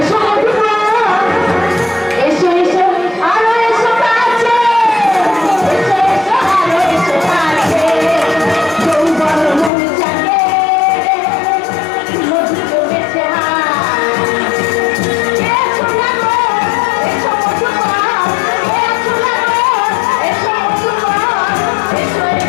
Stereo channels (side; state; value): right; drops out; at 9.7 s